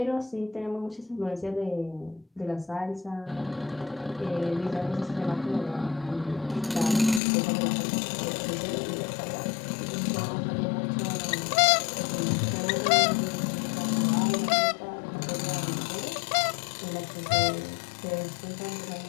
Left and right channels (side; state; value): right; drops out; at 7.2 s